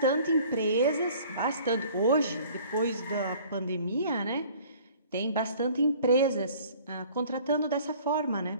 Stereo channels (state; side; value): inverted; both; correlation -0.51